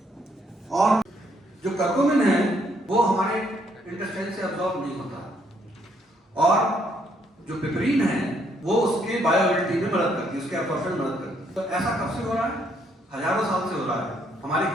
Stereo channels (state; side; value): normal; both; correlation 0.70